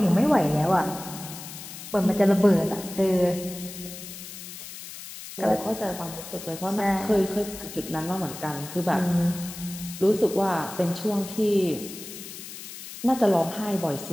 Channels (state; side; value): noise; left; hiss, 12 dB below the sound